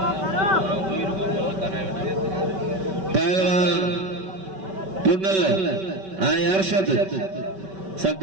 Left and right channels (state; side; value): late; left; 5.2 ms